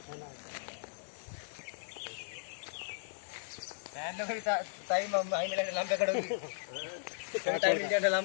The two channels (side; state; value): right; silent; digital silence